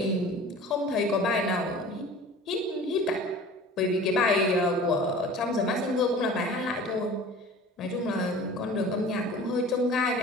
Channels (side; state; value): both; normal; correlation 0.42